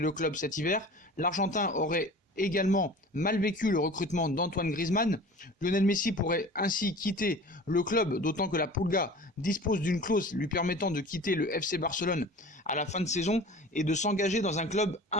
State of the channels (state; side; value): normal; both; correlation 0.40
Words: club cet hiver. L'Argentin aurait également mal vécu le recrutement d'Antoine Griezmann. Lionel Messi pourrait ainsi quitter le club, d'autant que la Pulga dispose d'une clause lui permettant de quitter le FC Barcelone à la fin de saison et de s'engager dans un club